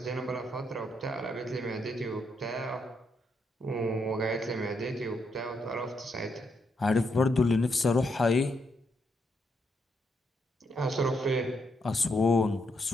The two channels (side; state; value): both; normal; correlation 0.78